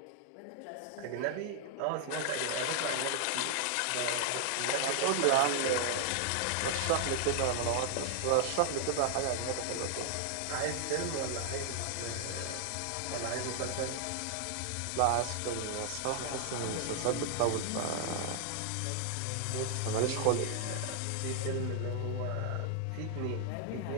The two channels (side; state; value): both; different; correlation 0.00